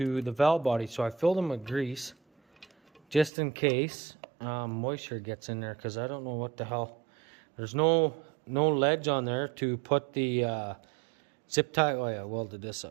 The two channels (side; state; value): left; drops out; at 3.3 s